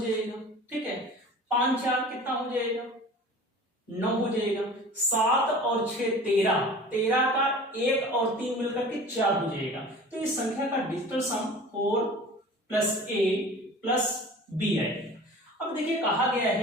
ठीक है। 5 4 कितना हो जाएगा? 9 हो जाएगा। 7 और 6 13, 13 का 1 और 3 मिलकर के 4 हो जाएगा। तो इस संख्या का डिजिटल सम 4 + a + b है। अब देखिए कहा गया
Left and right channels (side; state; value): both; normal; correlation 0.41